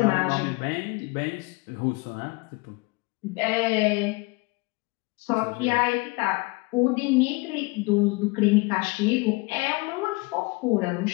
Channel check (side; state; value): right; quieter; 26.0 dB